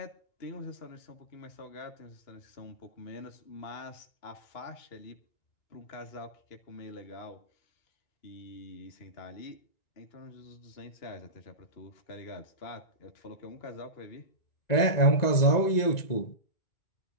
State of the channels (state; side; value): late; right; 1.9 ms